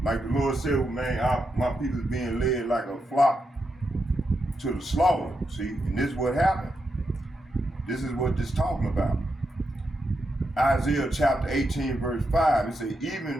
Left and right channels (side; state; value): both; normal; correlation 0.85